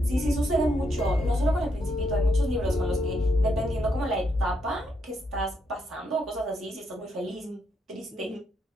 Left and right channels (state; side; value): normal; both; correlation 0.78